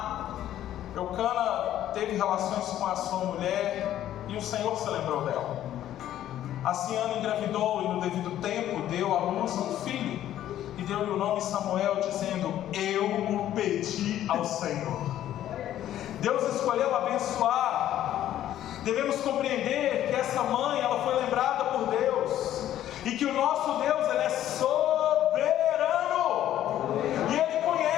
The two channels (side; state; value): right; quieter; 12.2 dB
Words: Eucana teve relações com a sua mulher e o Senhor se lembrou dela. Assim Ana engravidou e no devido tempo deu à luz um filho e deu-lhe o nome Samuel, dizendo: eu o pedi ao Senhor. Deus escolheu abençoar. Devemos compreender que essa mãe, ela foi lembrada por Deus, e que o nosso Deus, ele é soberano, e Ele